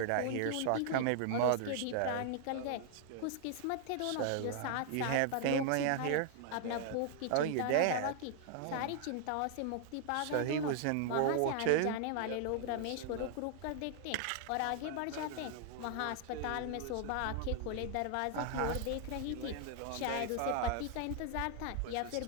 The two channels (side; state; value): both; different; correlation 0.00